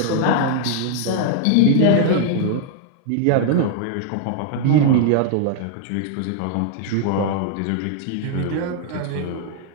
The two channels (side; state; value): both; different; correlation -0.01